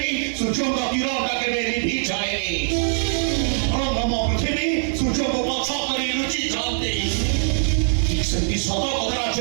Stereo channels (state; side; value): silent; left; digital silence